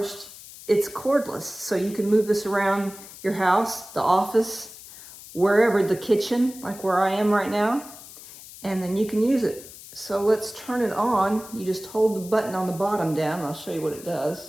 it's cordless. So you can move this around your house, the office, wherever, the kitchen, like where I am right now. And then you can use it. So let's turn it on. You just hold the button on the bottom down, and I'll show you what it does.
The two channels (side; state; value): left; noise; hiss, 17 dB below the sound